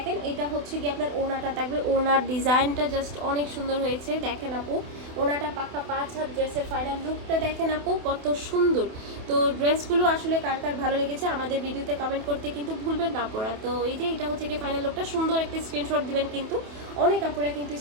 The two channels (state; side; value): late; left; 28 ms